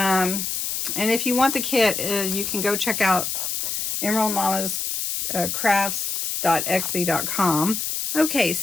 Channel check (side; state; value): left; noise; hiss, 2 dB below the sound